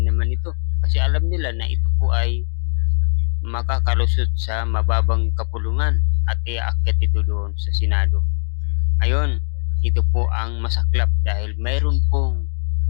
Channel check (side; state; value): right; silent; 58 dB below the other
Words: naman ito kasi alam nila na ito po ay makakalusot sa mababang kapulungan at iaakyat ito doon sa Senado. Ngayon, ito po ang masaklap dahil mayroon pong